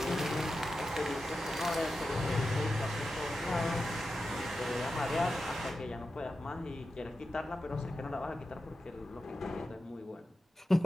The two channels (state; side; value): normal; both; correlation 0.91